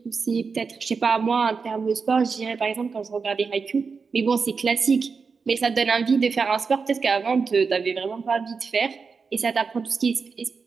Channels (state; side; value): quieter; left; 5.1 dB